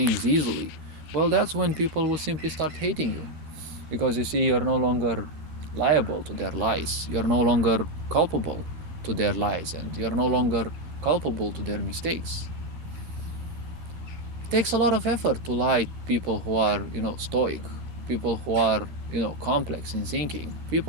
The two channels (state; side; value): late; left; 13 ms